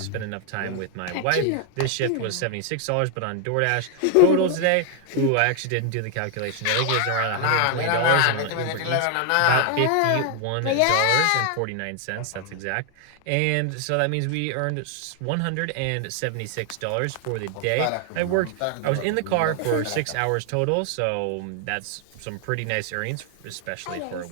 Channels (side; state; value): both; different; correlation 0.00